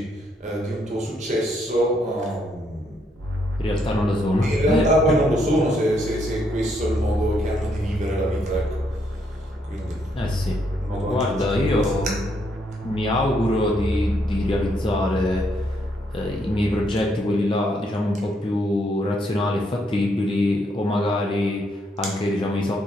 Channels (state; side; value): normal; both; correlation 0.74